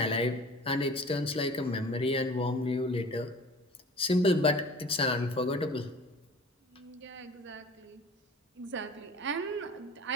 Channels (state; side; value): normal; both; correlation 0.42